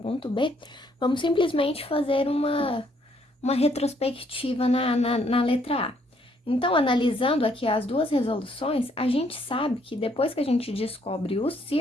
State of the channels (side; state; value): both; normal; correlation 0.68